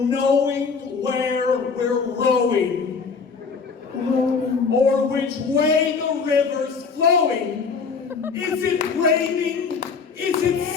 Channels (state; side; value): quieter; right; 5.2 dB